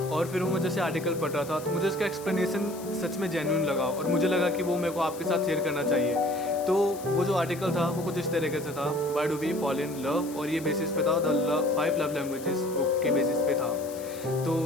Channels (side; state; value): left; noise; hiss, 17 dB below the sound